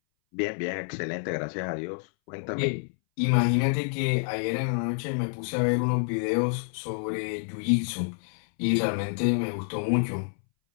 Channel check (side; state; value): right; silent; 59 dB below the other